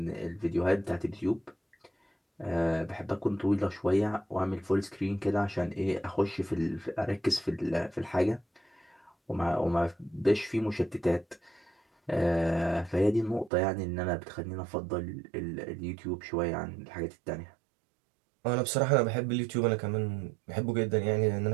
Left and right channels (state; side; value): drops out; left; at 13.5 s